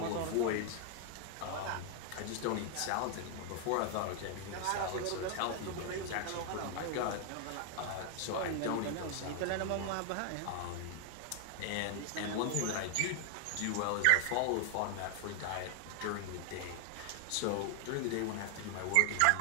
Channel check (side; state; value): both; different; correlation 0.00